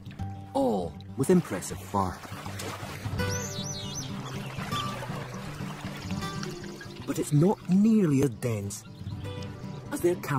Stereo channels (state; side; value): identical; both; correlation 1.00